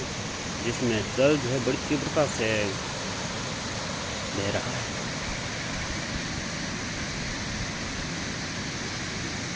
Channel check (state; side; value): identical; both; correlation 1.00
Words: जिसमें जल जो है बड़ी तीव्रता से बह रहा है।